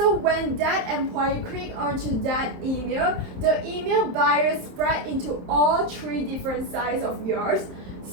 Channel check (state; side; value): late; left; 27 ms